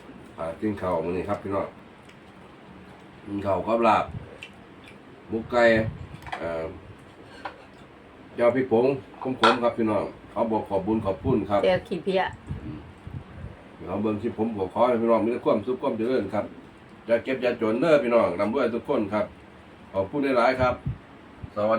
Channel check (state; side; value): identical; both; correlation 1.00